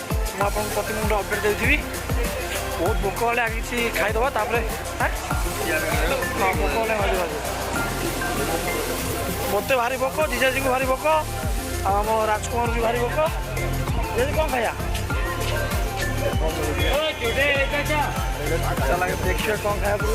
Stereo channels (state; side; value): identical; both; correlation 1.00